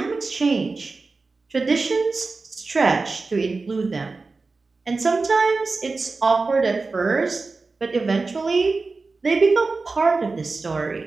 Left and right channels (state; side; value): quieter; left; 3.9 dB